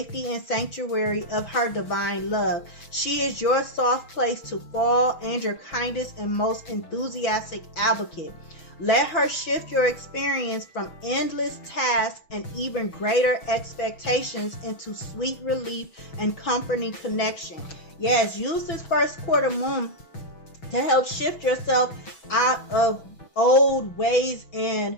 and sanctuary of her divine love. She is your soft place to fall and your kindest and most enthusiastic advocate. Let her shift your experience from endless tasks and even greater expectations into sweet relief and comforting connection. Yes, use this first quarter moon to help shift yourself out of old ways and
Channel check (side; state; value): right; late; 6.2 ms